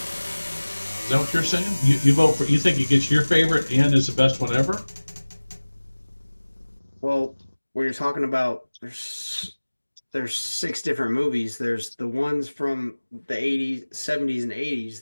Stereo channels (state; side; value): inverted; both; correlation -1.00